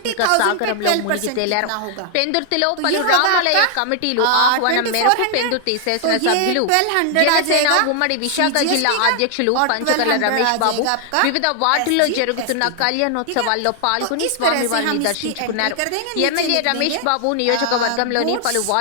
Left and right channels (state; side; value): different; both; correlation 0.00